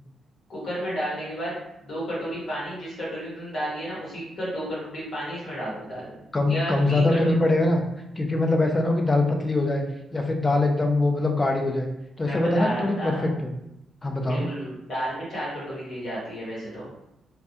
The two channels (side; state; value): both; normal; correlation 0.86